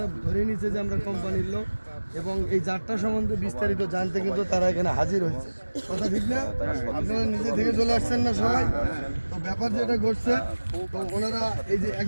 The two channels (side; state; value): both; inverted; correlation -1.00